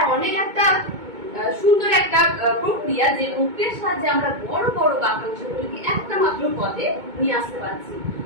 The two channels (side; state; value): left; late; 2.2 ms